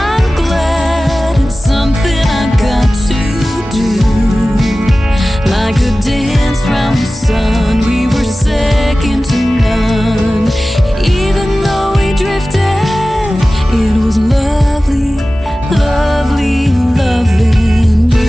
Like a dance round the sun, we were second to none. Even though we drifted, it was lovely, lovely loving you.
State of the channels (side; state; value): both; normal; correlation 0.96